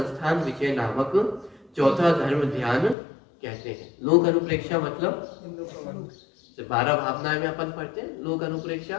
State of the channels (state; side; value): drops out; right; at 3.0 s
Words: विजय नामक चौथा धर्म ध्यान कहते हैं। लोक अनुप्रेक्षा मतलब 12 भावनाएं में अपन पढ़ते हैं लोक अनुप्रेक्षा,